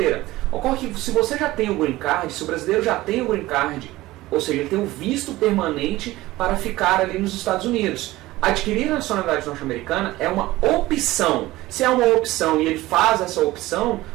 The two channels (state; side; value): quieter; left; 17.8 dB